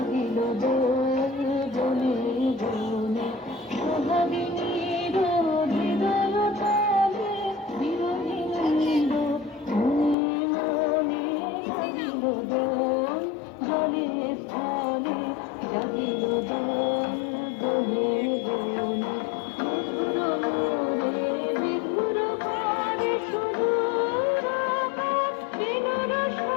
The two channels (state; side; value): drops out; right; at 10.2 s